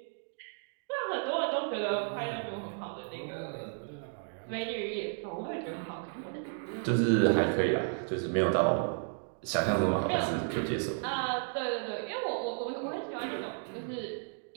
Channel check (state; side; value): silent; left; 56 dB below the other